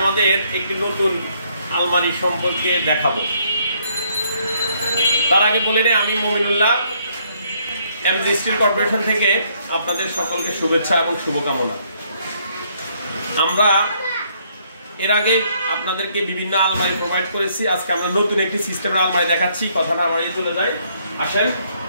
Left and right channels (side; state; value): both; inverted; correlation -0.69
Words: আমাদের একটি নতুন আলমারি সম্পর্কে দেখাবো। তার আগে বলে নেই, আমি মমিনুল্লাহ, এমজি স্টিল কর্পোরেশন থেকে আপনাদের সকলকে শুভেচ্ছা এবং শুভকামনা। আমরা এর আগে আপনাদেরকে বিভিন্ন আলমারি প্রোভাইড করেছি। আজকে আমরা নতুন একটি সিস্টেমের আলমারি দেখাচ্ছি। কথা না বাড়িয়ে চলে যাই, আসেন